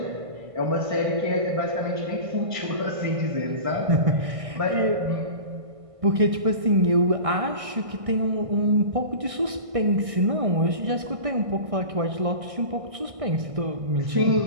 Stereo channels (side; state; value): left; late; 1.6 ms